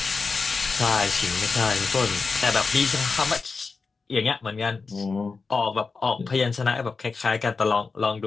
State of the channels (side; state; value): right; quieter; 4.5 dB